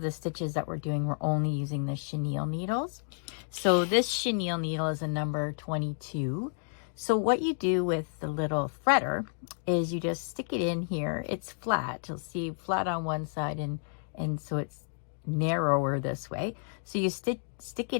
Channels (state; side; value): silent; right; digital silence